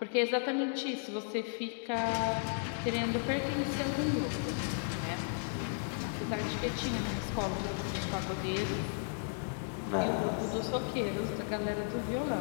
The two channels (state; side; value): silent; right; digital silence